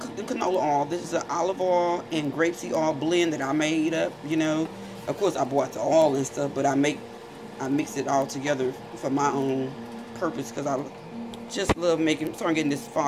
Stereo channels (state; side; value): identical; both; correlation 1.00